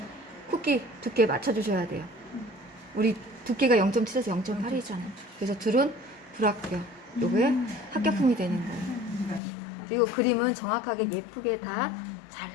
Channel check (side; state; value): right; drops out; at 9.4 s